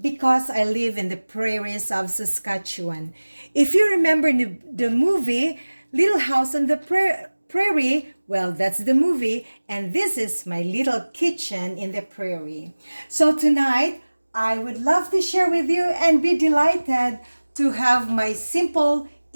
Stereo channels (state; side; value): inverted; both; correlation -1.00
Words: I live in the prairies of Saskatchewan. If you remember the movie Little House on the Prairie, well, that's the movie, and this is my little kitchen in the prairie. So tonight, I would love to share with you and be delighted to have my simple,